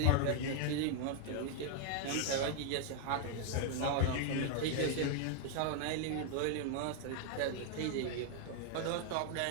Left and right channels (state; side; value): different; both; correlation 0.00